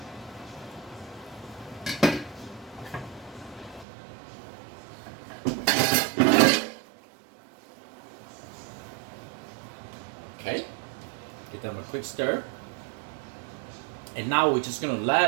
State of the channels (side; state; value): left; drops out; at 3.9 s